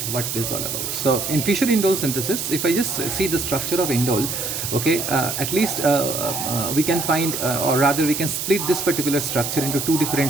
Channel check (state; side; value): noise; right; hiss, 3 dB below the sound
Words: what it is all about. So in Fischer indole synthesis, if I just see the structure of indole, okay, at least we can find, or rather we can split this particular structure into 2